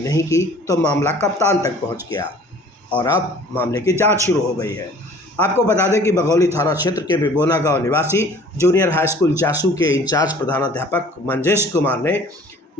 की तो मामला कप्तान तक पहुंच गया और अब मामले की जांच शुरू हो गई है। आपको बता दें कि बघौली थाना क्षेत्र के बिबोना गांव निवासी जूनियर हाई स्कूल जासू के इंचार्ज प्रधानाध्यापक मंजेश कुमार ने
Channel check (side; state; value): both; normal; correlation 0.50